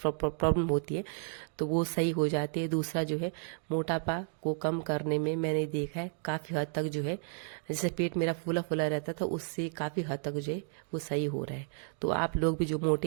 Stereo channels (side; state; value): left; silent; 56 dB below the other